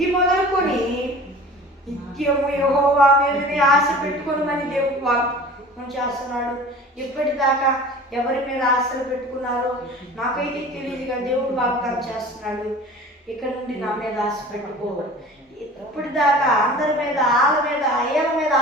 మొదలుకొని నిత్యము యెహోవా మీదనే ఆశ పెట్టుకొనమని దేవుడు వాగ్దానం చేస్తున్నాడు. ఇప్పటిదాకా ఎవరి మీద ఆశలు పెట్టుకున్నారో నాకైతే తెలియదు, కానీ దేవుడు వాగ్దానం చేస్తున్నాడు. ఇక్కడ నుండి నా మీద ఆశ పెట్టుకో. ఇప్పటిదాకా అందరి మీద, ఆళ్ళ మీద, ఏళ్ళ మీద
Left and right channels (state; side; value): normal; both; correlation 0.41